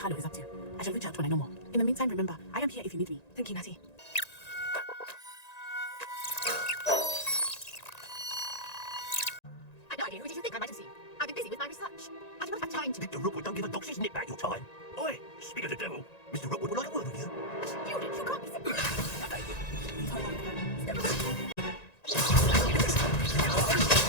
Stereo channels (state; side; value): late; right; 1.9 ms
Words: is up to. I shall reach out when I know more. In the meantime, remember, I am here if you need me. Thank you, Natty. I've no idea who did you think I might have seen. I've been busy with my research. I do not have time to... Mr. Rookwood don't give a doxy's nip back your time. Oi, speak of the devil. Mr. Rookwood would like a word with you. Student, you can't be simple.